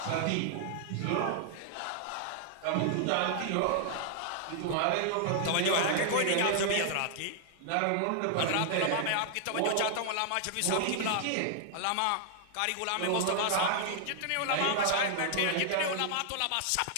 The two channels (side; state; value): both; different; correlation -0.01